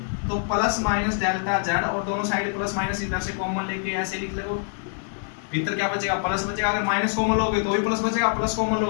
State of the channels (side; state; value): right; silent; 56 dB below the other